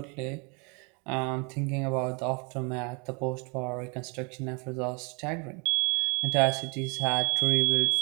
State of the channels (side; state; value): left; quieter; 32.8 dB